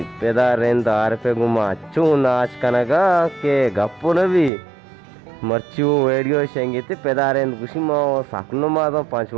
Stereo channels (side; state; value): left; drops out; at 4.5 s